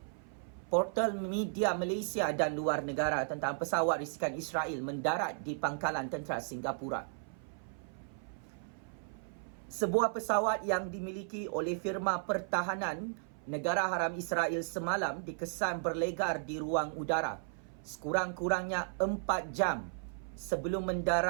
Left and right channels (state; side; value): silent; left; 54 dB below the other